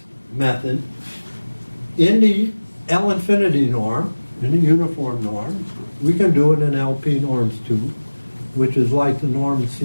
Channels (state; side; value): inverted; both; correlation -1.00